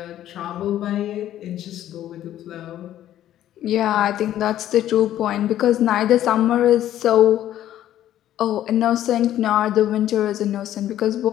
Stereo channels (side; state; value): right; quieter; 12.2 dB